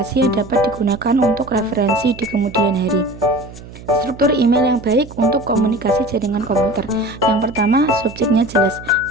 yang dapat digunakan untuk referensi di kemudian hari. Struktur email yang baik untuk komunikasi jaringan komputer. Yang pertama, subjeknya jelas.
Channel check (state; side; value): noise; right; hum, 16 dB below the sound